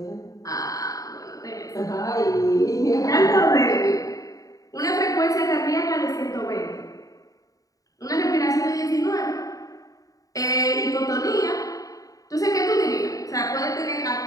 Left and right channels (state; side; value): late; right; 0.17 ms